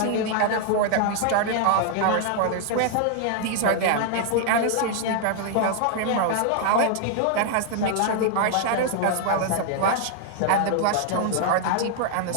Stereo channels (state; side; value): different; both; correlation 0.00